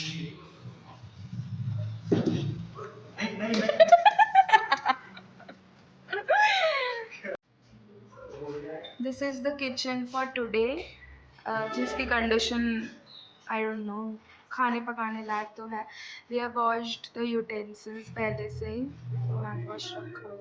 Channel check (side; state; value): both; identical; correlation 1.00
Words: This is the kitchen for today, जिसकी कंडीशन आई डोंट नो, खाने पकाने लायक तो है। We have washed the utensils पहले से ही, तो हैंड वॉश रखा